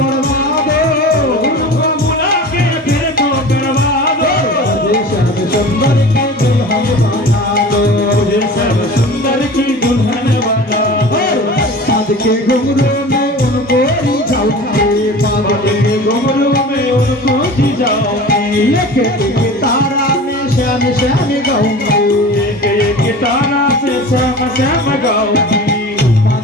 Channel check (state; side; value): normal; both; correlation 0.37